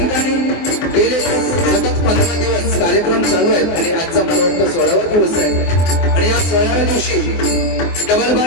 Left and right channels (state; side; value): late; right; 24 ms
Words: गेले सतत 15 दिवस कार्यक्रम चालू आहेत आणि आजचा मला वाटतं 16वा दिवस आहे आणि या 16व्या दिवशी